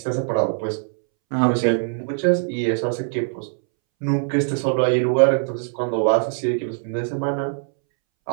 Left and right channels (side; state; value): left; silent; 64 dB below the other